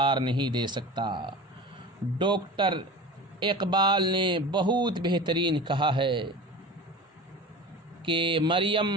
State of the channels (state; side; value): normal; both; correlation 0.34